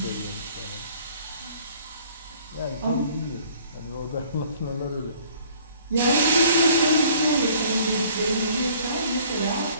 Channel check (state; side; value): inverted; both; correlation -0.56